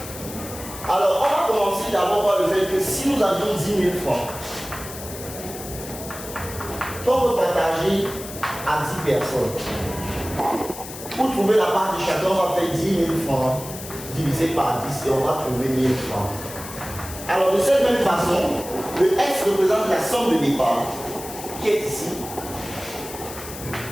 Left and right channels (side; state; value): left; noise; hiss, 12 dB below the sound